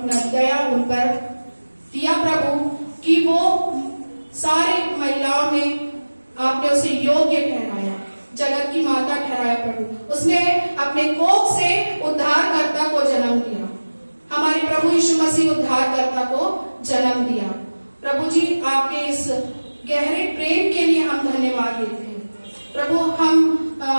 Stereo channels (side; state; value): both; inverted; correlation -1.00